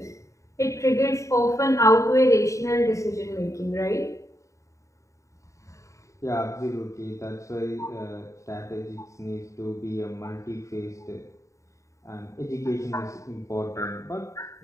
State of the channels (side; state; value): right; late; 0.15 ms